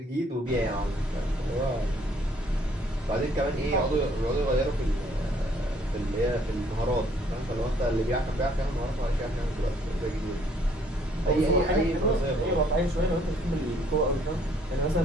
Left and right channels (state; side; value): normal; both; correlation 0.63